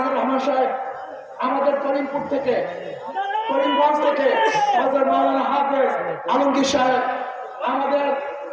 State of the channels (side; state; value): both; identical; correlation 1.00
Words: রহমান সাহেব আমাদের করিমপুর থেকে, করিমগঞ্জ থেকে হযরত মাওলানা হাফেজ আলমগীর সাহেব, আমাদের